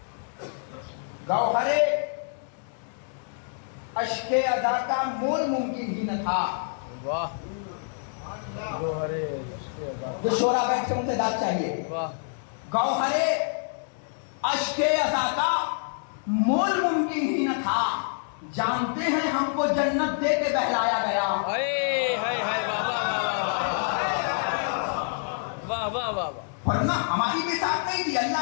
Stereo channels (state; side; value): silent; right; digital silence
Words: गौहरे अश्के अदा का मोल मुमकिन ही न था। जो शोरा बैठ के उनसे दाद चाहिए। गौहरे अश्के अदा का मोल मुमकिन ही न था। जानते हैं हमको जन्नत दे के बहलाया गया। वरना हमारी भी साथ नहीं थी।